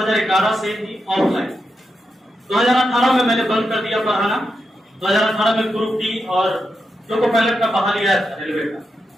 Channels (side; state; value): both; normal; correlation 0.87